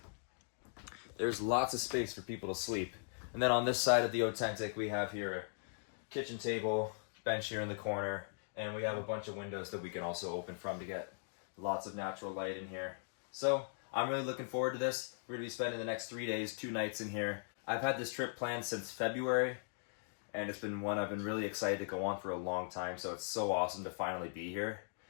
there's lots of space for people to sleep. And then on this side of the authentic, we have here a kitchen table, bench here in the corner, and we have a bunch of windows that we can also open from to get lots of natural light in here. So I'm really looking forward to this. We're gonna be spending the next 3 days, 2 nights in here. I've had this trip planned since February, and it's been one I've been really excited to go on for a long time. So it's so awesome to finally be here.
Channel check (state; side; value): silent; right; digital silence